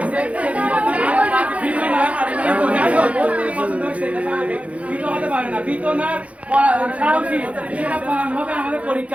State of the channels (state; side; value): late; left; 0.065 ms